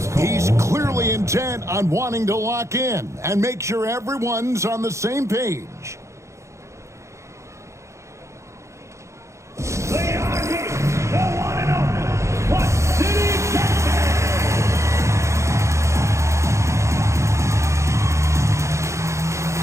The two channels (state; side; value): late; left; 0.14 ms